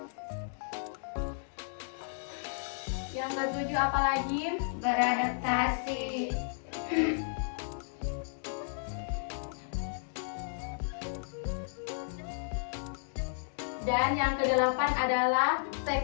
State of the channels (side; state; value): right; silent; digital silence